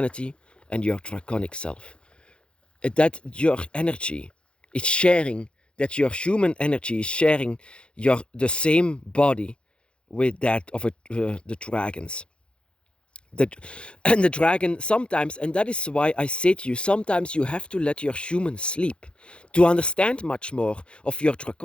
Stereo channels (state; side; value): late; right; 0.056 ms